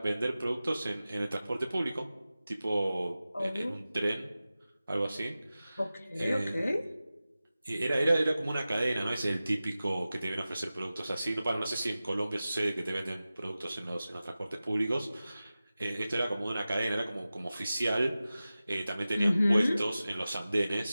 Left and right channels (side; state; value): both; inverted; correlation -0.95